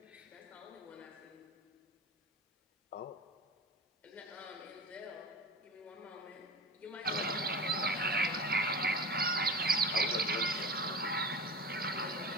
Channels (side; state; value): both; normal; correlation 0.30